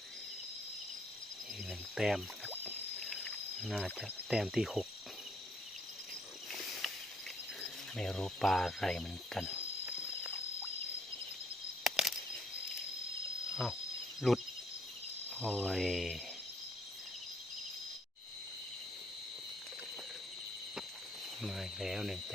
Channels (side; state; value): both; normal; correlation 0.67